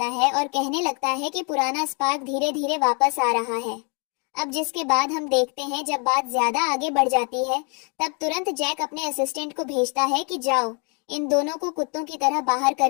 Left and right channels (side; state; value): right; quieter; 36.2 dB